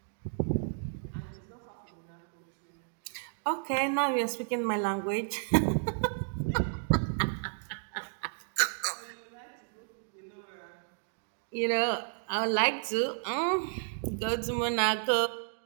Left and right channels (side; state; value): left; silent; digital silence